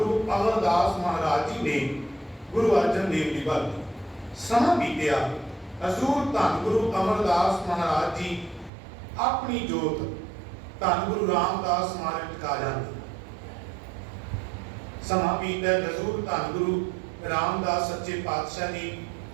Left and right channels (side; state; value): left; drops out; at 8.7 s